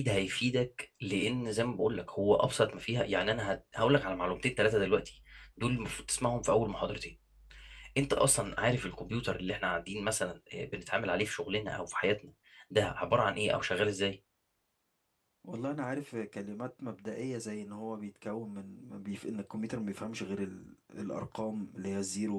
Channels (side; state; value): both; identical; correlation 1.00